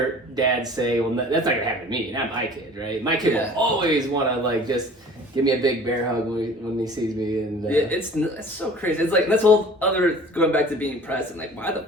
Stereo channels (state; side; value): normal; both; correlation 0.46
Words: dads say, well, that's not gonna happen to me, not my kid, right? My kid will always want to like just give me a big bear hug when he sees me, and it's so crazy. It's like, that's whole other, going back to being present. Like,